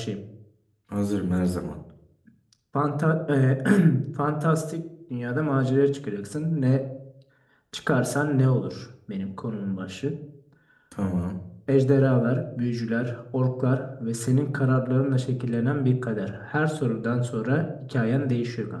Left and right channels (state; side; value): identical; both; correlation 1.00